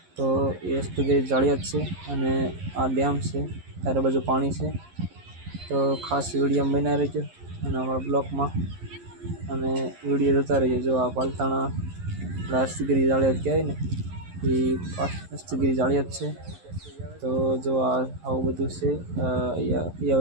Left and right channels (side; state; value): left; late; 11 ms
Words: તો એ હસ્તગીરી જાળિયાદ છે અને આ ડેમ છે, ચારે બાજુ પાણી છે. તો ખાસ વિડીયો બનાવી રહેજો અને અમારા બ્લોગમાં અને વિડીયો જોતા રહીજો. જો આ પાલતાણા હસ્તગીરી જાળિયાદ કહેવાય ને એ હસ્તગીરી જાળિયાદ છે. તો જો આવું બધું છે